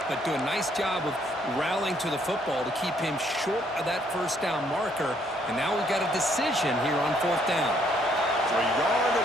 but do a nice job of rallying to the football to keep him short of that first down marker. And now we've got a decision here on fourth down. So a yard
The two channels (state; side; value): normal; both; correlation 0.68